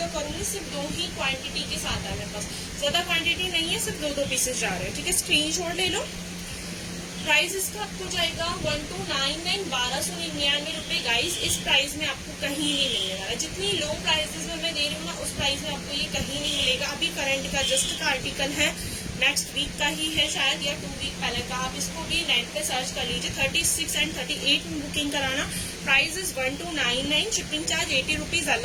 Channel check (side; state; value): both; identical; correlation 1.00